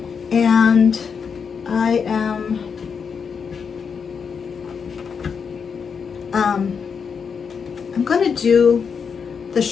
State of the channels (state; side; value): quieter; right; 6.2 dB